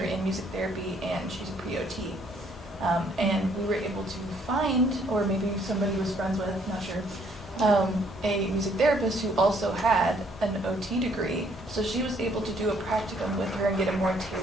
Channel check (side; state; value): both; normal; correlation 0.65